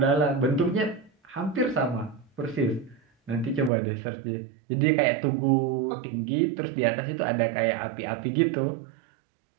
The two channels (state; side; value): drops out; left; at 3.7 s